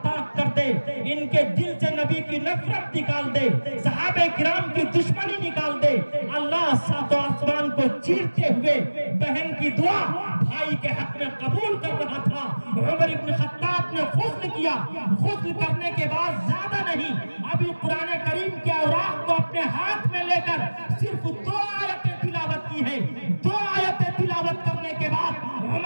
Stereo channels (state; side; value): inverted; both; correlation -1.00